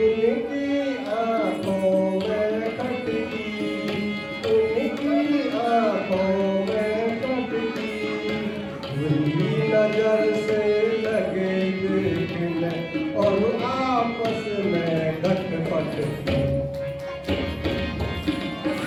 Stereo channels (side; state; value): both; identical; correlation 1.00